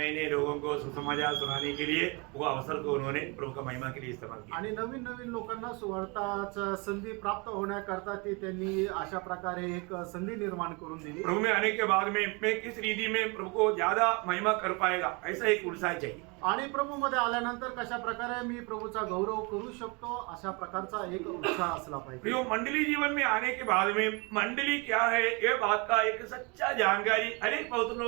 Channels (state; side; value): quieter; left; 29.6 dB